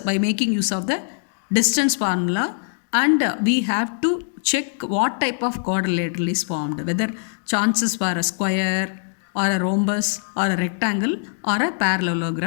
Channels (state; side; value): silent; right; digital silence